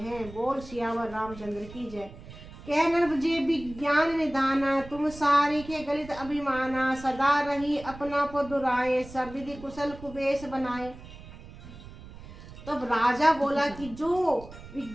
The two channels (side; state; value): right; noise; rumble, 16 dB below the sound